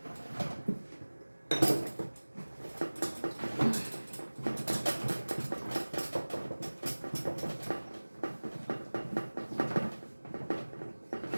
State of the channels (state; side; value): inverted; both; correlation -1.00